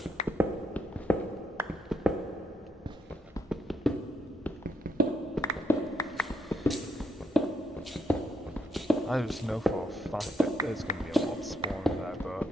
I just know for a fact that there's going to be a mob spawning there,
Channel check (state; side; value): normal; both; correlation 0.77